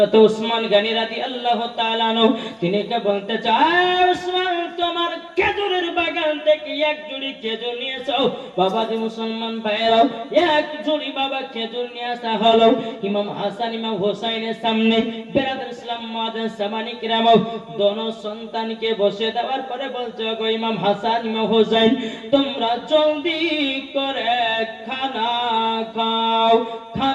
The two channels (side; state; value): both; identical; correlation 1.00